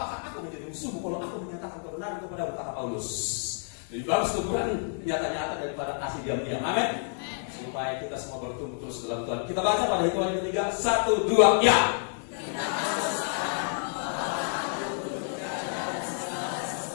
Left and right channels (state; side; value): silent; right; digital silence